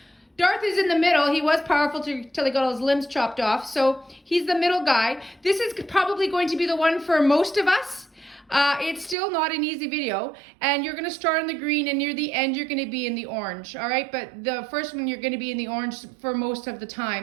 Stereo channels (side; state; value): left; drops out; at 9.2 s